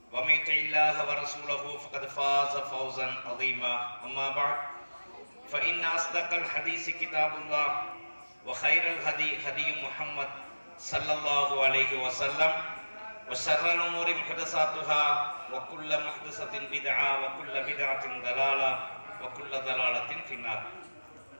ومن يطع الله ورسوله فقد فاز فوزا عظيما أما بعد فإن أصدق الحديث كتاب الله وخير الهدي هدي محمد صلى الله عليه وسلم وشر الأمور محدثاتها وكل محدثة بدعة وكل بدعة ضلالة وكل ضلالة في النار.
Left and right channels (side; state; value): both; inverted; correlation -1.00